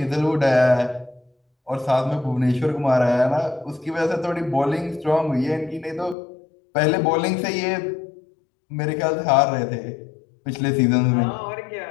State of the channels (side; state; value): right; drops out; at 6.2 s